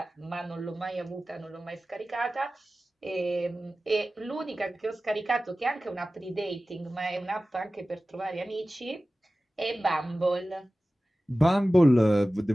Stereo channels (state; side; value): normal; both; correlation 0.96